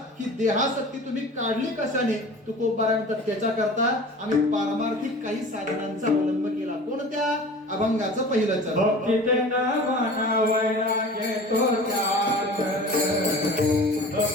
ही देहासक्ती तुम्ही काढली कशाने? तुकोबारायण तर त्याच्या करता आम्ही पारमार्थिक काही साधनांचा अवलंब केला. कोणत्या? अभंगाचं पहिलं चरण. भक्तीते नामना वैराग्य तो त्याग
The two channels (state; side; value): normal; both; correlation 0.40